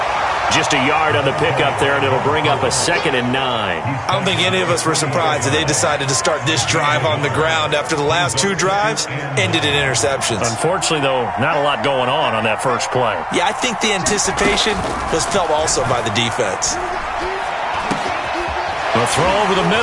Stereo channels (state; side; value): identical; both; correlation 1.00